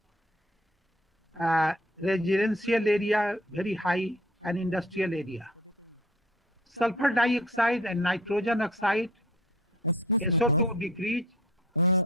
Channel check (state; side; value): normal; both; correlation 0.51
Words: Residential area very high, and industrial area. Sulfur dioxide and nitrogen oxide. Excuse me, Prof.